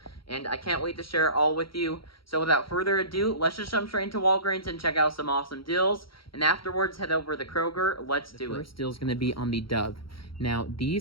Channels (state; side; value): late; right; 0.74 ms